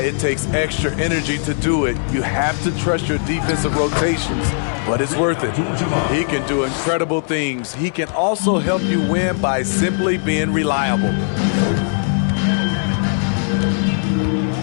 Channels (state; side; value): silent; right; digital silence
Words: it takes extra energy to do it. You have to trust your defensive rotations, but it's worth it. He can do incredible things. He can also help you win by simply being reliable.